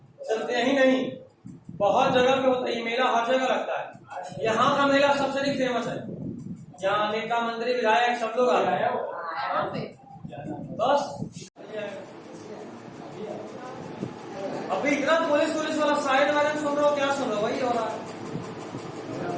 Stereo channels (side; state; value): both; identical; correlation 1.00